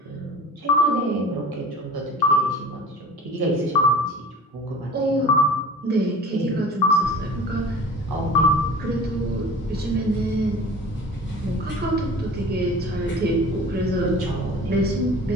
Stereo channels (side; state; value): both; normal; correlation 0.41